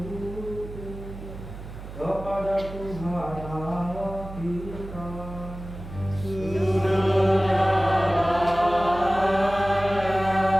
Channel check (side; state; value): right; noise; hum, 12 dB below the sound